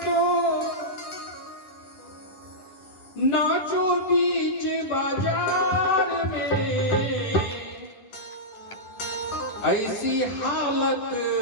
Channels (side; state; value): right; late; 10 ms